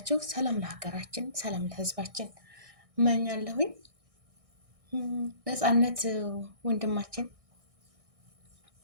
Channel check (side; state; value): left; late; 1.6 ms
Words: ሰላም ለሀገራችን፣ ሰላም ለህዝባችን እመኛለሁኝ። ነፃነት ወንድማችን